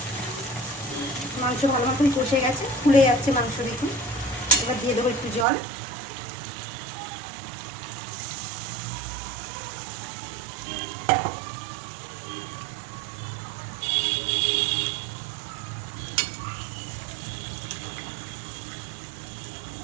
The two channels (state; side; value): drops out; left; at 5.5 s